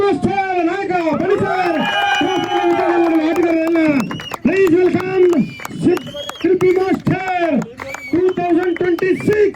ನಾಯಕ ಬಣಿಸರ್ ಆಟಗಾರರೆಲ್ಲ please welcome Shilpi master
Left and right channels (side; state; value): both; identical; correlation 1.00